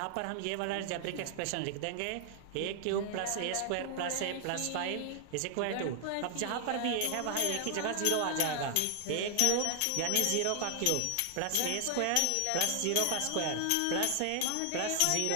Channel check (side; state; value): both; different; correlation 0.00